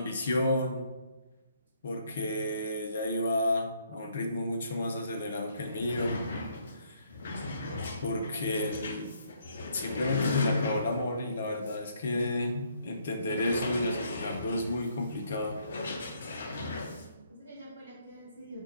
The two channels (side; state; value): both; inverted; correlation -0.69